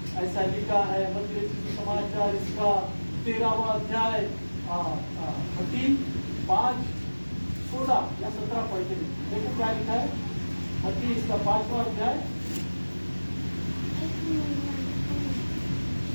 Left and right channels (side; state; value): both; inverted; correlation -1.00